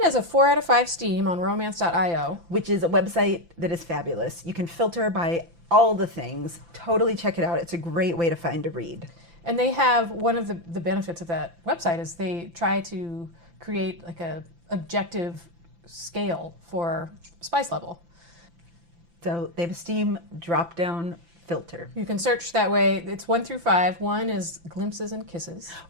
as a 4 out of 5 steam on romance.io. Which is a website that is fabulous. You can filter by all the things. Totally check it out. It's a great way to find a read. And they have, one of the benefits of that website is they try to create like a objective scale for spice level. So they have a steam drop-down filter. You can search that way. It's 1 through 5. 1 is glimpses and kisses.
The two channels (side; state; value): left; late; 5.9 ms